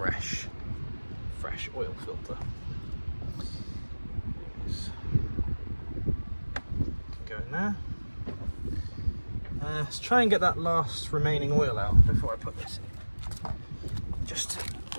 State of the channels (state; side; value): inverted; both; correlation -1.00